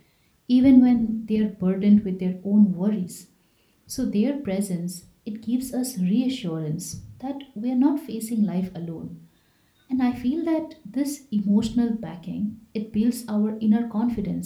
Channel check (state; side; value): identical; both; correlation 1.00